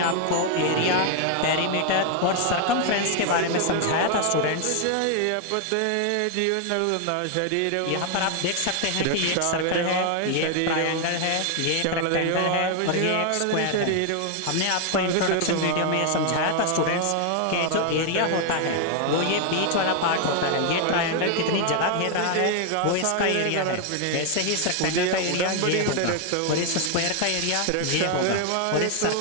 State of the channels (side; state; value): both; different; correlation 0.00